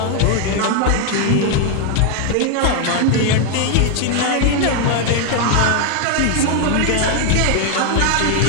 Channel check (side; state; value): both; different; correlation 0.01